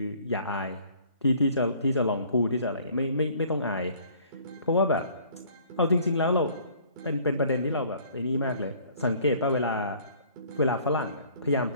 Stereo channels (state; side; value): inverted; both; correlation -0.56